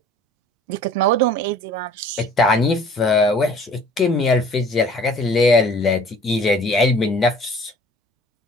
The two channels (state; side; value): normal; both; correlation 0.50